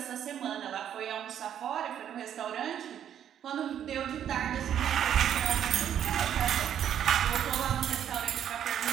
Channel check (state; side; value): quieter; left; 9.7 dB